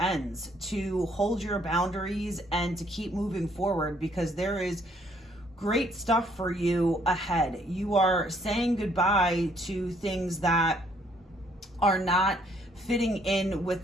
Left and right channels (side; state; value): both; normal; correlation 0.65